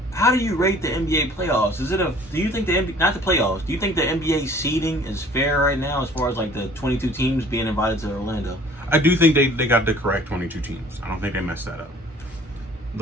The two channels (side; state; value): both; normal; correlation 0.51